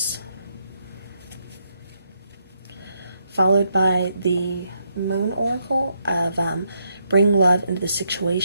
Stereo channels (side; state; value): both; inverted; correlation -0.78